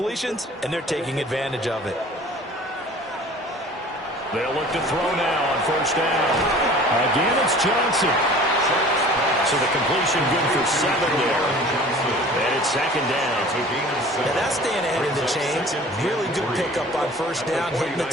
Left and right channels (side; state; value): both; normal; correlation 0.45